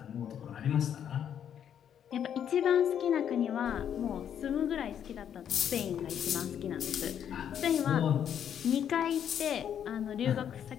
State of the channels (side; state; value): right; quieter; 9.1 dB